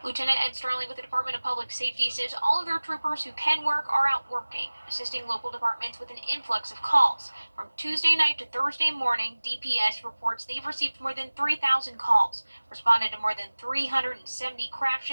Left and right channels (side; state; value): both; inverted; correlation -1.00